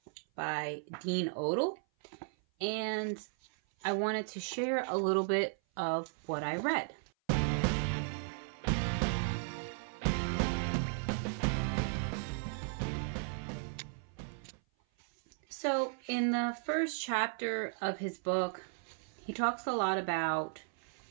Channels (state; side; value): silent; left; 54 dB below the other